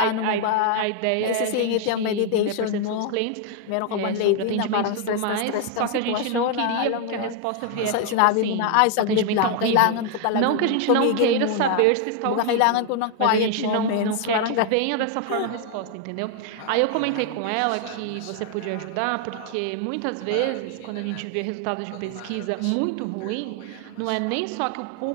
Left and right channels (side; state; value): both; different; correlation 0.00